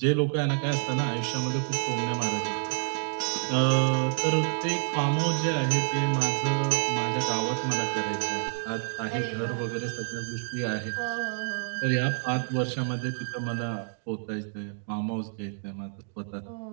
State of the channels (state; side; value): silent; left; digital silence